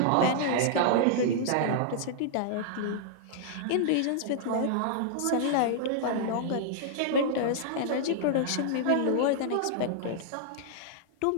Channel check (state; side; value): different; both; correlation -0.01